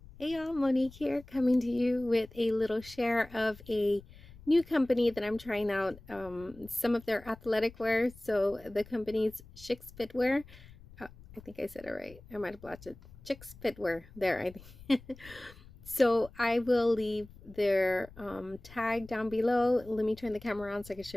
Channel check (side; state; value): left; noise; rumble, 21 dB below the sound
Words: Hey y'all, Monique here, coming to you with a little share of a new company that I'm trying out, some of their athletic wear. So the company's ChicsFitWear. I think I said it right. I might have blotched it. ChicsFitWear. There, I think. So I will leave their tag down below. Let me turn the camera on so I can